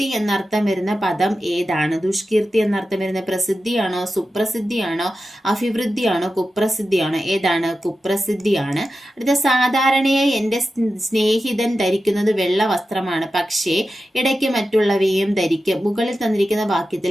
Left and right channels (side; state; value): both; normal; correlation 0.92